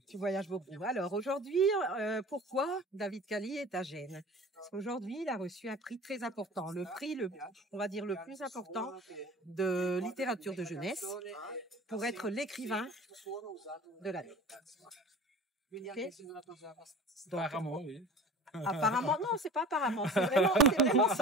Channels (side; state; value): both; normal; correlation 0.40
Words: Tu voyages beaucoup. Alors aujourd'hui, pourquoi David Cali est à Gênes? Parce qu'aujourd'hui, il a reçu un prix très important, le prix, on va dire le plus important de littérature de jeunesse, pour être l'écrivain de l'année. Okay. Donc, Apparemment, oui. apparemment, non, c'est pas apparemment, c'est vraiment